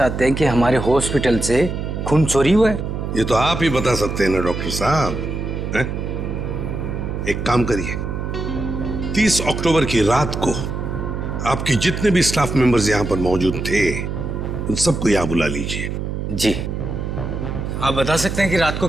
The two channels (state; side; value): noise; right; hum, 4 dB below the sound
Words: हैं कि हमारे हॉस्पिटल से खून चोरी हुआ है? ये तो आप ही बता सकते हैं ना डॉक्टर साहब। एक काम करिए, 30 अक्टूबर की रात को आपके जितने भी स्टाफ मेंबर्स यहाँ पर मौजूद थे उन सबको यहाँ बुला लीजिए। जी। आप बता सकते हैं कि रात को